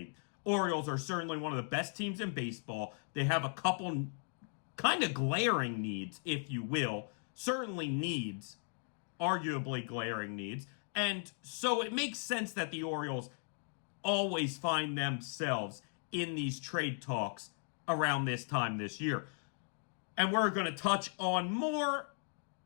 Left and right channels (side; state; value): right; silent; 53 dB below the other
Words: Orioles are certainly one of the best teams in baseball. They have a couple kind of glaring needs, if you will. Certainly needs, arguably glaring needs. And so it makes sense that the Orioles always find themselves in these trade talks around this time this year. And we're going to touch on more